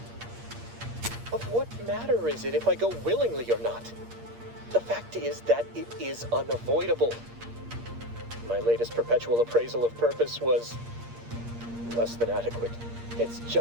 Of what matter is it if I go willingly or not? The fact is that it is unavoidable. My latest perpetual appraisal of purpose was less than adequate. It's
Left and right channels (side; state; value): left; late; 8.6 ms